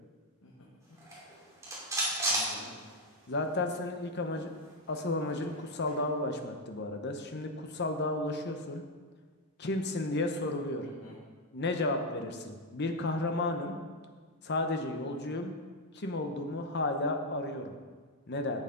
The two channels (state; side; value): normal; both; correlation 0.04